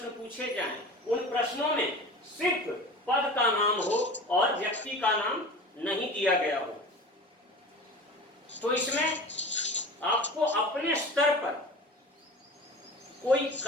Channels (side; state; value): both; normal; correlation 0.36